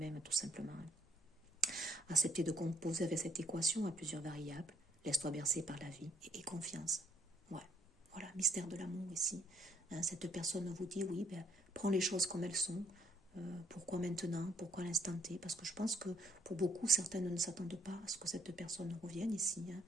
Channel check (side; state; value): both; normal; correlation 0.66